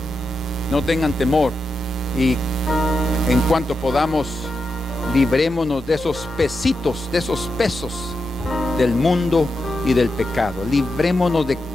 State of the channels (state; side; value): normal; both; correlation 0.88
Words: no tengan temor, y en cuanto podamos, librémonos de esos pesitos, de esos pesos del mundo y del pecado. Librémonos de